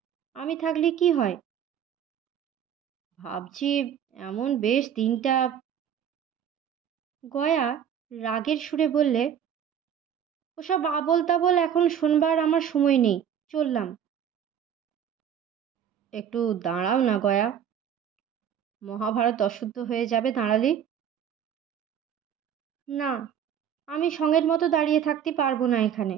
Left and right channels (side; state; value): left; quieter; 8.9 dB